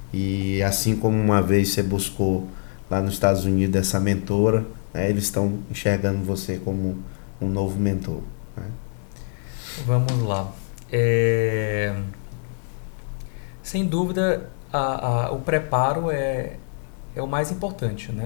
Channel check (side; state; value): right; silent; digital silence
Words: E assim como uma vez você buscou lá nos Estados Unidos essa mentora, né, eles estão enxergando você como um novo mentor, né? Vamos lá. Sem dúvida, o preparo é o mais importante,